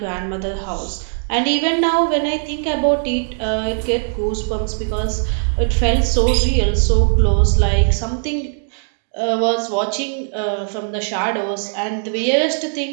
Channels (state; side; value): silent; left; digital silence